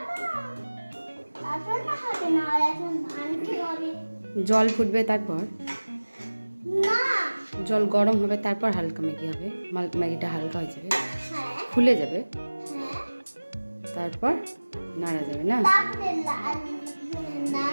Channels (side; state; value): both; inverted; correlation -1.00